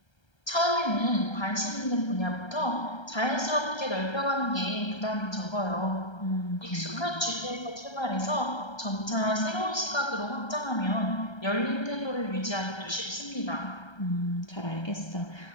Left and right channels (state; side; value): late; right; 1.3 ms